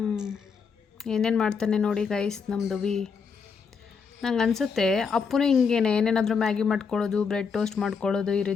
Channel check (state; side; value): quieter; right; 5.7 dB